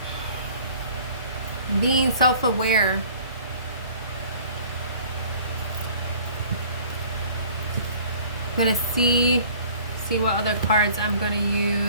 Being self-aware. I'm gonna see what other cards I'm gonna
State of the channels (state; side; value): inverted; both; correlation -0.52